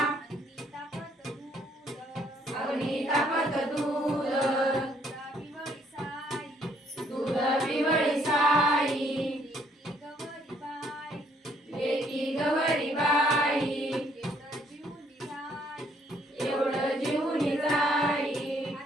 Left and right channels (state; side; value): normal; both; correlation 0.66